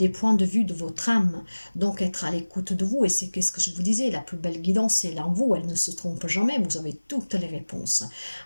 points de vue de votre âme, donc être à l'écoute de vous, et c'est ce que je vous disais, la plus belle guidance c'est en vous, elle ne se trompe jamais, vous avez toutes les réponses.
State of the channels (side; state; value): both; inverted; correlation -1.00